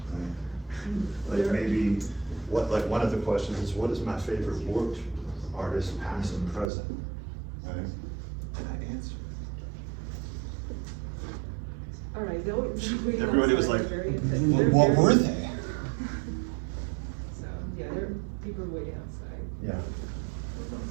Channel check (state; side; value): drops out; left; at 6.7 s